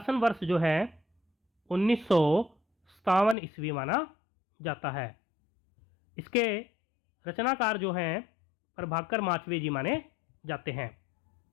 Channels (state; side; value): drops out; right; at 3.4 s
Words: वर्ष जो है 1957 ईस्वी माना जाता है। इसके रचनाकार जो हैं प्रभाकर माचवे जी माने जाते हैं।